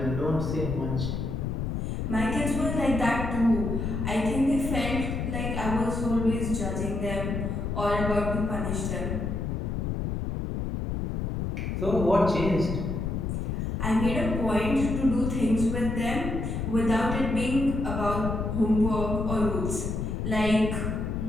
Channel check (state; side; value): noise; left; rumble, 2 dB below the sound